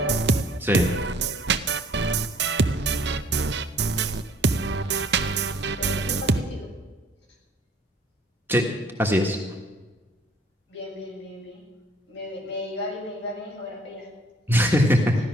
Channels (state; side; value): normal; both; correlation 0.58